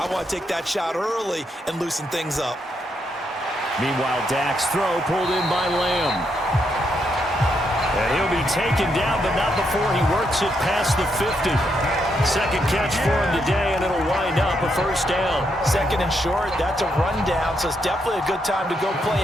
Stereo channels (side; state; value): both; normal; correlation 0.79